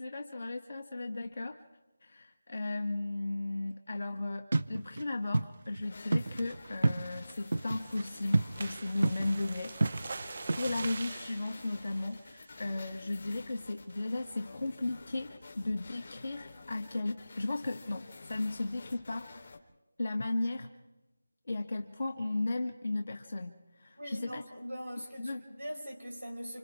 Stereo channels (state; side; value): inverted; both; correlation -0.96